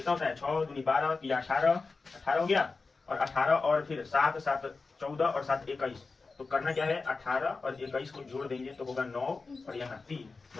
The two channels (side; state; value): right; quieter; 4.1 dB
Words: होता है, 6 दूनी 12, 3 18, 18 हो गया, और 18 और फिर 7 7 14 और 7 21, तो करना क्या है, 18 और 21 को जोड़ देंगे तो होगा 9 और यहाँ 3,